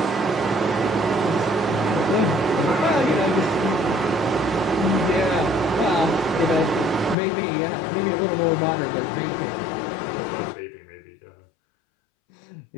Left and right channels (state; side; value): drops out; right; at 7.2 s